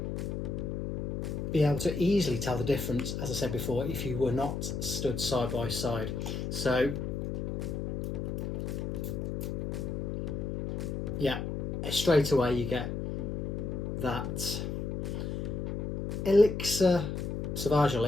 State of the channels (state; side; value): noise; left; hum, 3 dB below the sound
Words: be able to easily tell the difference, as I said before, if you were not stood side by side. So yeah, straight away you get that Elixir, Sauvage